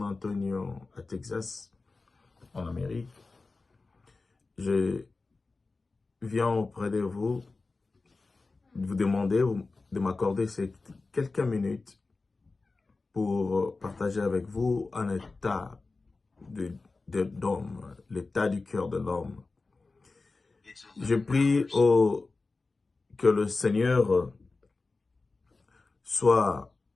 Antonio à Texas, en Amérique. Je viens auprès de vous demander de m'accorder ces quelques minutes pour partager avec vous un état d'homme, l'état du cœur de l'homme. Je prie que le Seigneur soit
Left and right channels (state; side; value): quieter; right; 3.7 dB